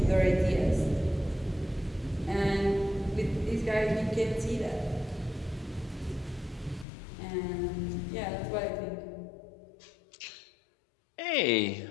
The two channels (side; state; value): right; drops out; at 6.9 s